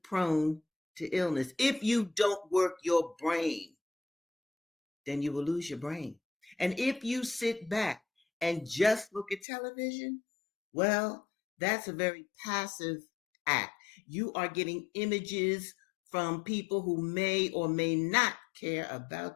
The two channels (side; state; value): right; drops out; at 9.4 s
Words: prone to illness. If you don't work your brain, then you will lose your brain. And if you sit back and just look at television, well, that's a very passive act. You are getting images from people who may or may not care